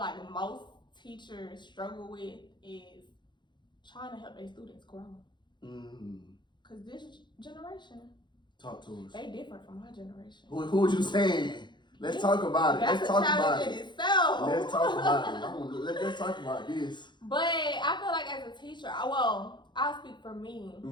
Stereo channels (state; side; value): late; right; 0.22 ms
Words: most teachers struggle with is trying to help their students grow. Because this generation, talk to us. They different from my generation. Who was you saying? Let's talk about it. That's Let's talk about it. Itself. Let's talk about it. Let's talk about this. But I feel like as a teacher, I'll speak for me.